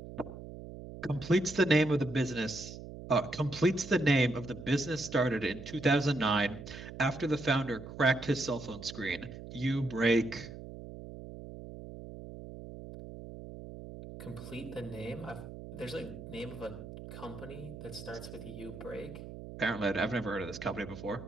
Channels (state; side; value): noise; right; hum, 12 dB below the sound